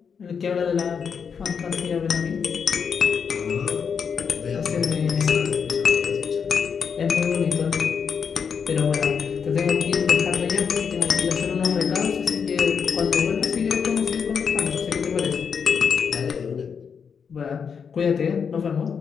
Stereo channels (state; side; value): quieter; right; 6.5 dB